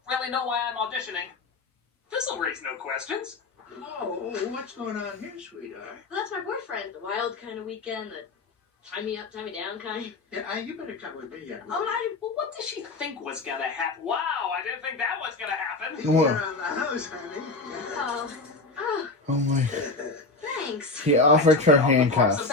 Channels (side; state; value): right; quieter; 3.5 dB